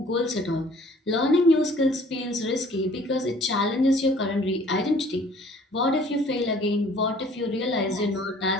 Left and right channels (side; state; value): both; normal; correlation 0.54